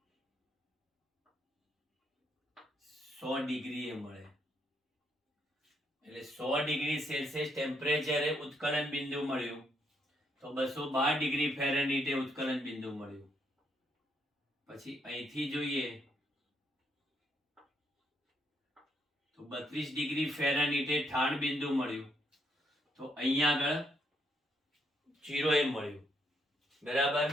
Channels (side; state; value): both; normal; correlation 0.75